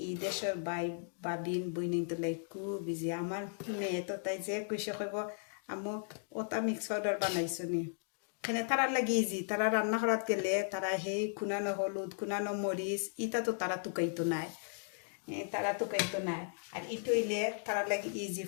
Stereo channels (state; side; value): silent; right; digital silence